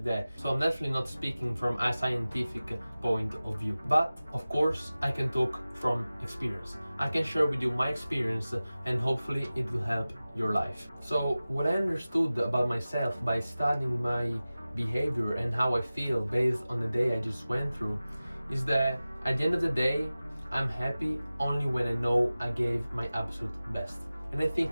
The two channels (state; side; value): inverted; both; correlation -0.97